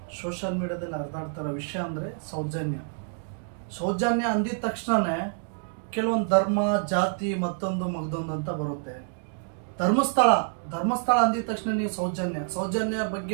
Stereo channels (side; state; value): left; silent; 60 dB below the other